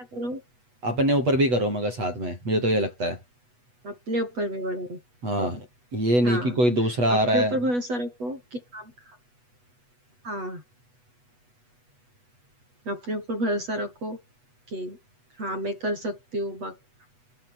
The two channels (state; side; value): late; left; 8.1 ms